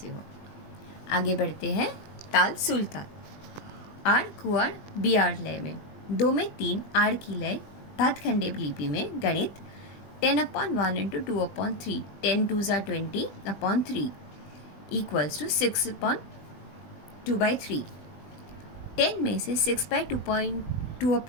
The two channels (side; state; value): right; late; 20 ms